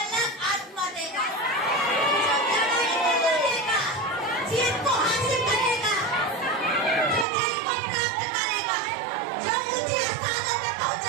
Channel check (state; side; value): drops out; left; at 7.2 s